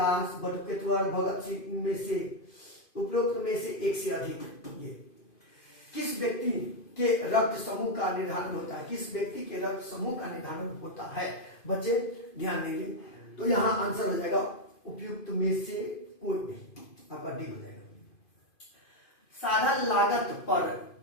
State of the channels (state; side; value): late; right; 2.5 ms